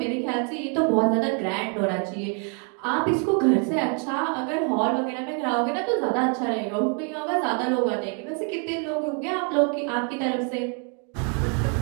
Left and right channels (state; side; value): quieter; left; 39.5 dB